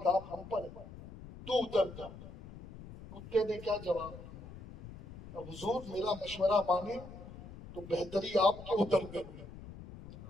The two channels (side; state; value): left; noise; rumble, 15 dB below the sound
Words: ہم پر ہے، تو اتر جا۔ کتے نے کیا جواب دیا؟ اب حضور میرا مشورہ مانے تو بہتری آپ کے اتر کر میں،